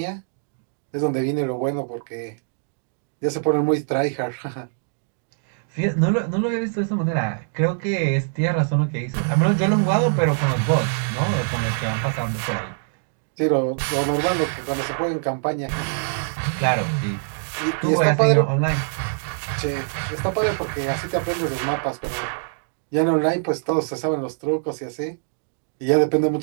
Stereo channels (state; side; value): silent; left; digital silence